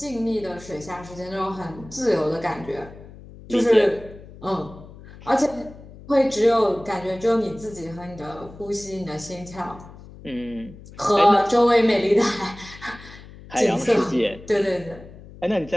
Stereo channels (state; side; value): noise; left; hum, 18 dB below the sound